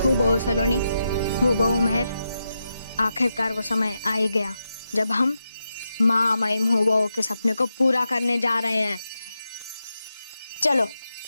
हूबहू सलोनी, हूबहू मेहर, आखिरकार वो समय आ ही गया जब हम महामहिम हूबहू के सपने को पूरा करने जा रहे हैं। चलो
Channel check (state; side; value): inverted; both; correlation -0.87